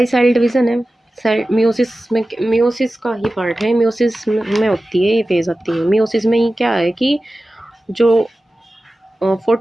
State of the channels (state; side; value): normal; both; correlation 0.95